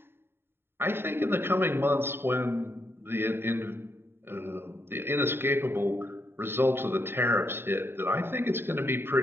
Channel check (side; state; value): left; late; 0.11 ms